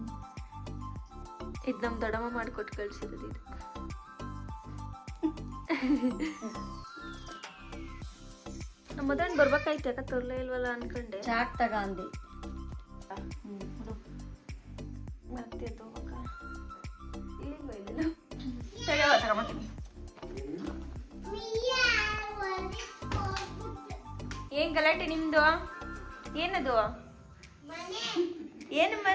ಇದು ನಮ್ಮ ದೊಡ್ಡಮ್ಮ ಮಾಡಿಕೊಟ್ಟು ಕಳ್ಸಿರೋದು ಇದು. ನಮ್ಮ ಮದನ್ ಬರ್ಬೇಕಾಯ್ತು, ಯಾಕೆ ತರಲೇ ಇಲ್ವಲ್ಲ ಅನ್ಕೊಂಡೆ. ಚಾಟ್ ತಗೊಂಡು ಮತ್ತೆ ತಗೋಬೇಕ ಇಲ್ಲಿಂದ ಇಲ್ಲ ಸರಿ ತಗೊಂಬತ್ತೀನಿ. ಏನ್ ಗಲಾಟೆ ನಿಮ್ದು? ಏನದು?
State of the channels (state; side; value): identical; both; correlation 1.00